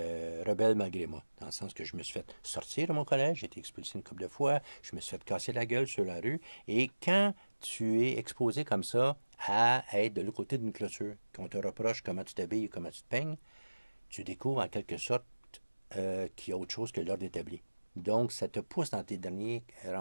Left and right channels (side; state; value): both; inverted; correlation -1.00